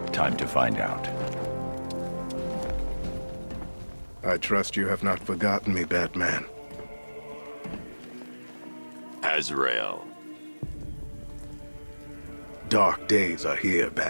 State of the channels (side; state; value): both; inverted; correlation -1.00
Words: Time to find out. I trust you have not forgotten me, Batman. Azrael. Dark days are here,